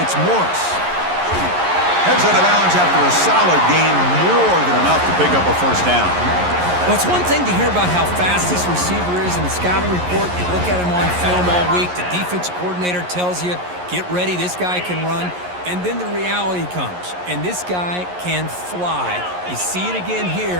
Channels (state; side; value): late; left; 11 ms